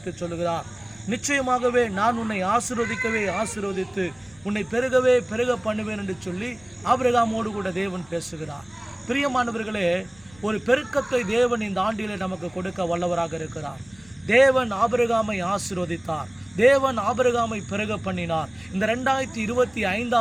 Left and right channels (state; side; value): noise; right; rumble, 27 dB below the sound